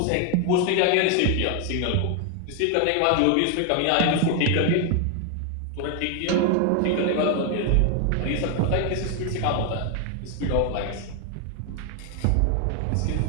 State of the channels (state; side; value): different; both; correlation 0.00